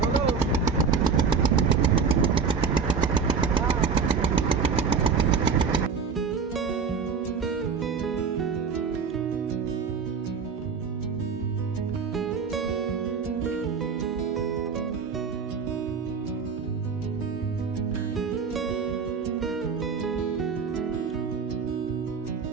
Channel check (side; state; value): left; quieter; 5.7 dB